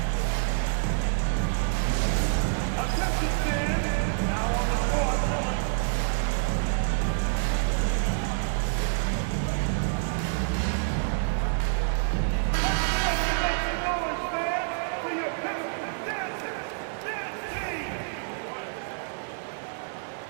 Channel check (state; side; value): silent; left; digital silence